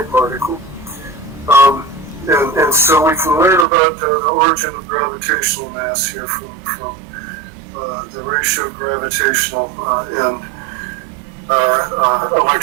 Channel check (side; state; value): left; drops out; at 3.7 s